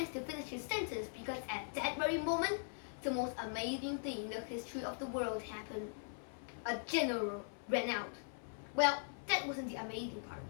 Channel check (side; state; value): right; silent; 51 dB below the other